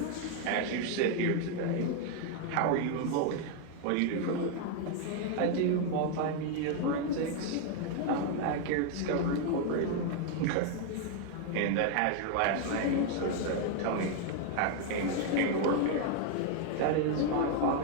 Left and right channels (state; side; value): different; both; correlation 0.00